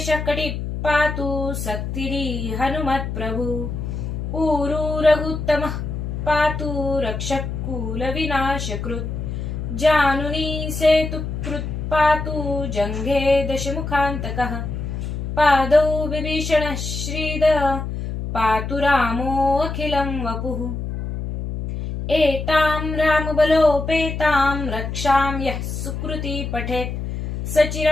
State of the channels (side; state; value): left; noise; hum, 5 dB below the sound